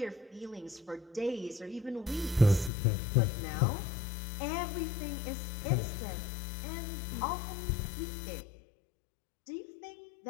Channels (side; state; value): right; drops out; at 2.7 s